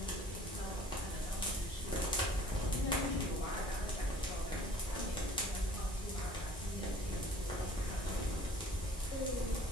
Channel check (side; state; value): both; normal; correlation 0.51